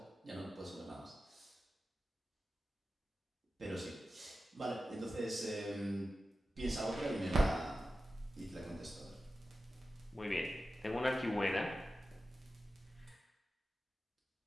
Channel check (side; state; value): both; normal; correlation 0.93